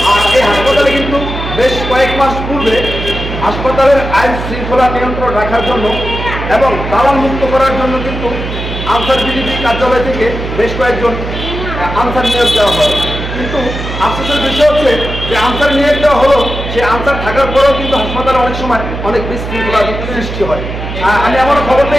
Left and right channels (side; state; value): right; noise; hum, 6 dB below the sound